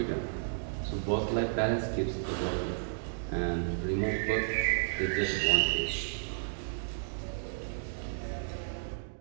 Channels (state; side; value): silent; left; digital silence